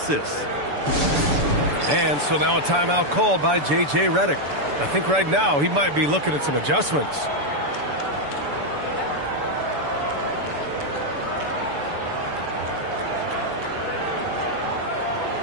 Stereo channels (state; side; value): late; left; 6.9 ms